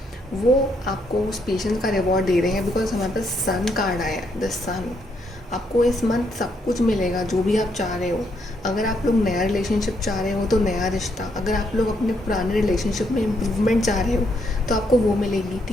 वो आपको उस पेशेंस का रिवॉर्ड दे रहे हैं। बिकॉज हमारे पास सन कार्ड आया है, द सन। आपको इस मंथ सब कुछ मिलेगा जो भी आप चाह रहे हो। अगर आप लोग नया रिलेशनशिप चाह रहे हो तो नया रिश्ता, अगर आप लोग अपने पुराने रिलेशनशिप में इम्प्रूवमेंट चाह रहे हो तो आपको वो मिलेगी,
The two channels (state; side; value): normal; both; correlation 0.75